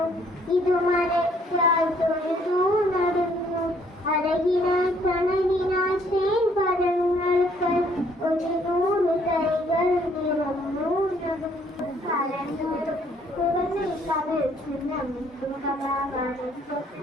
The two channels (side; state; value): both; normal; correlation 0.65